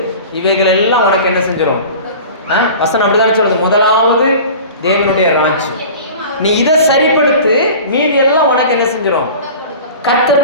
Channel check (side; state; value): both; inverted; correlation -0.39